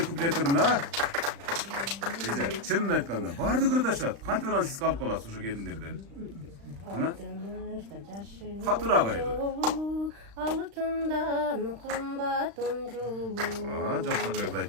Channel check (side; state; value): left; late; 35 ms